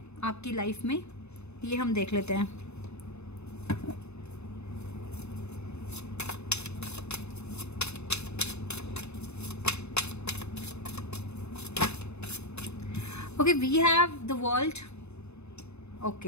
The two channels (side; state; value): right; late; 0.81 ms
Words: आपकी लाइफ में, ये हम देख लेते हैं। Okay, we have the world,